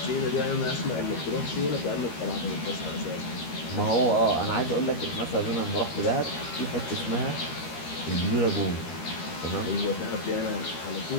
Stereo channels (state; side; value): late; right; 13 ms